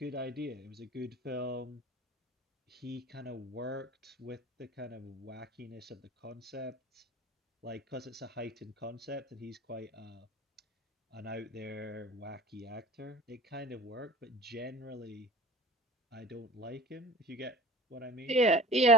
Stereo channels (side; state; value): both; normal; correlation 0.42